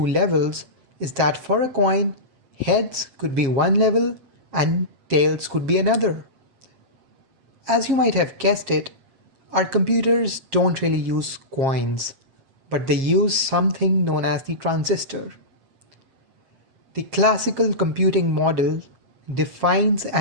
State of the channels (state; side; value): late; left; 7.5 ms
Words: levels is that for a coin, heads could be one level and tails could be another. As you might have guessed it, our computers don't really use coins, but they use something known as the transistor. The classical computing model defines